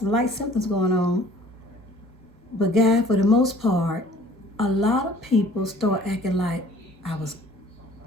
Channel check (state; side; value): normal; both; correlation 0.52